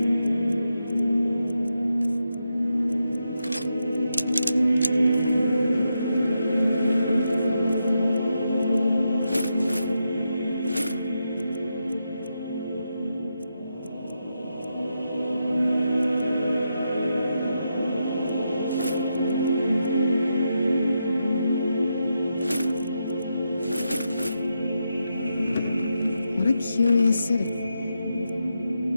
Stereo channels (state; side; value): inverted; both; correlation -0.85